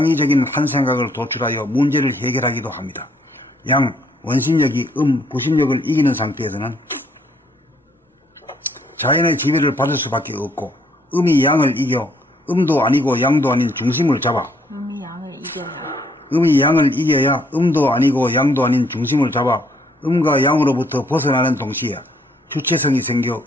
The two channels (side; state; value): both; normal; correlation 0.67